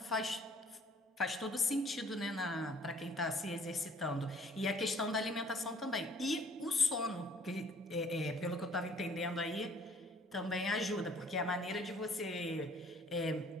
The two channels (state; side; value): normal; both; correlation 0.57